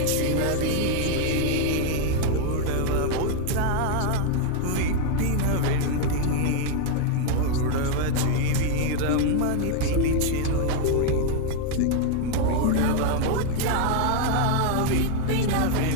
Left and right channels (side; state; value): both; different; correlation 0.01